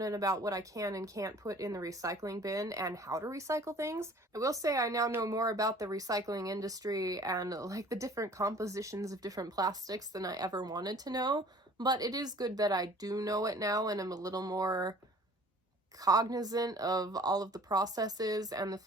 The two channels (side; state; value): both; normal; correlation 0.50